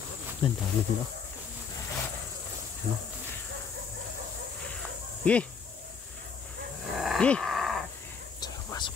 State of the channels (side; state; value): right; quieter; 5.9 dB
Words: Ang dami dito. Ano? Gi! Gi! Pasok,